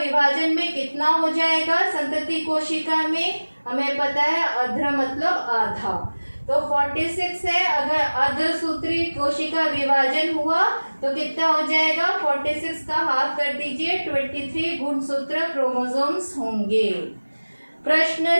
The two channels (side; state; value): both; inverted; correlation -1.00